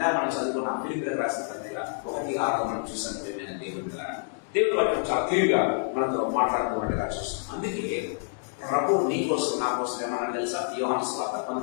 మనం చదువుకున్నాం ఫిలిప్పీయులకు రాసిన పత్రిక 1:6 మనం చూసాం. ప్రియమైన దేవుడు కదా, దేవుడు వాక్యం చాలా క్లియర్గా మనతో మాట్లాడుతున్నట్టుగా చూస్తున్నాం. అందుకే ప్రభు నీ కోసం, నా కోసం ఏమన్నా తెలుసా? యోహాను సువార్త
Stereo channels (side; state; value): right; silent; 60 dB below the other